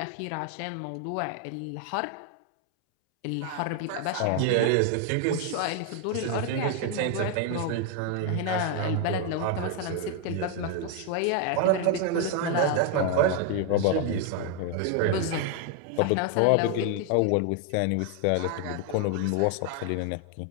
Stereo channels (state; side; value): different; both; correlation 0.01